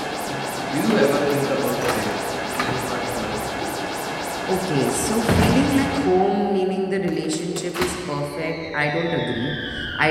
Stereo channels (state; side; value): identical; both; correlation 1.00